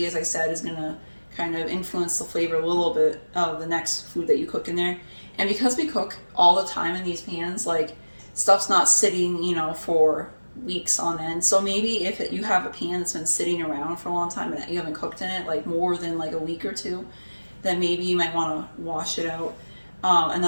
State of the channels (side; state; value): both; inverted; correlation -1.00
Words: as I said, is gonna kind of influence the flavor a little bit of the next food that you cook in there. And because we cook all the time in these pans, like, stuff's not sitting, you know, for weeks on end. So maybe if you have a pan that's been sitting around for a long time and you haven't cooked in it like more than like a week or two, then maybe you might want to wash it out.